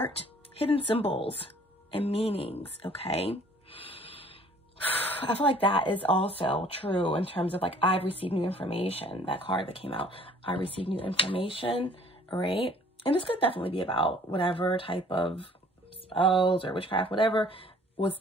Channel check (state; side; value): normal; both; correlation 0.55